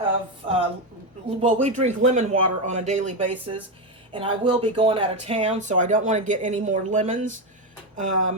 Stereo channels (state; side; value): normal; both; correlation 0.10